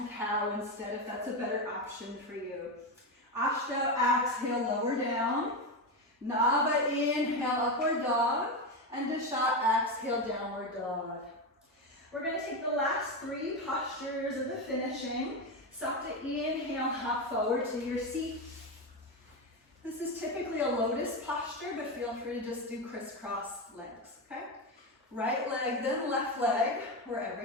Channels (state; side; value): normal; both; correlation 0.14